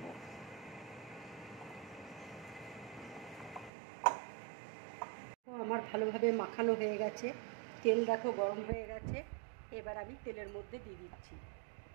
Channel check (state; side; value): drops out; left; at 3.7 s